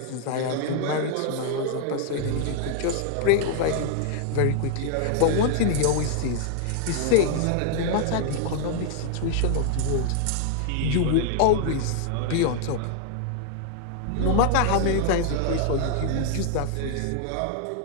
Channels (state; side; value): different; both; correlation -0.01